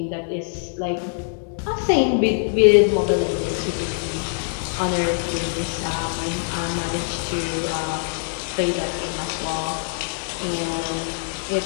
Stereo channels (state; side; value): silent; right; digital silence